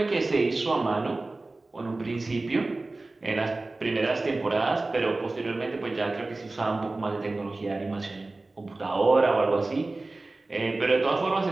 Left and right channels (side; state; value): left; quieter; 3.2 dB